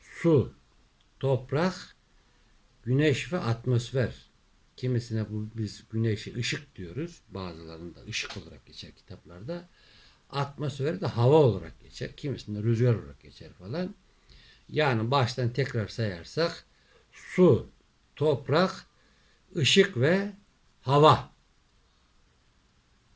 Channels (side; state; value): both; identical; correlation 1.00